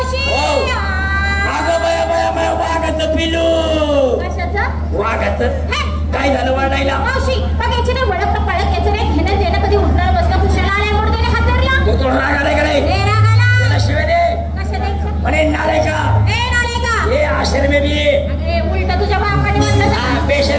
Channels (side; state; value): both; identical; correlation 1.00